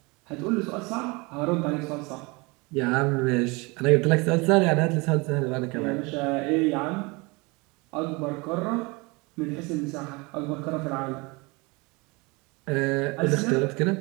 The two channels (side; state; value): left; quieter; 26.5 dB